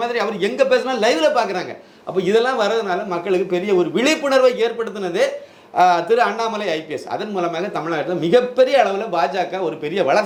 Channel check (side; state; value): both; identical; correlation 1.00